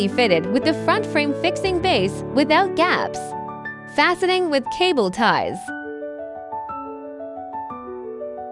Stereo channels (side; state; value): both; identical; correlation 1.00